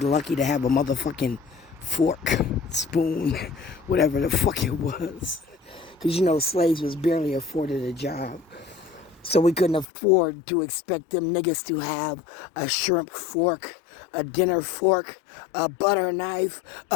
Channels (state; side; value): drops out; right; at 9.9 s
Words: to have a motherfucking fork, spoon, whatever the fuck it was. Because, slaves was barely afforded a job. So we couldn't afford to expect them niggas to have a shrimp fork, a dinner fork, a butter knife,